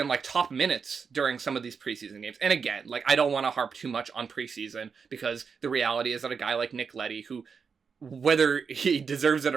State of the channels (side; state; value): left; quieter; 5.8 dB